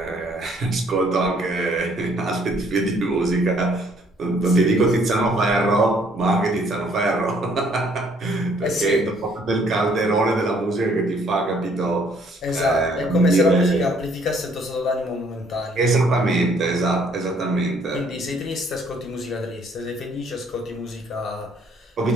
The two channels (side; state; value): both; normal; correlation 0.64